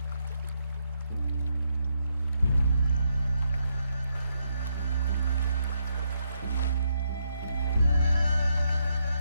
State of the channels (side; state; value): both; inverted; correlation -0.78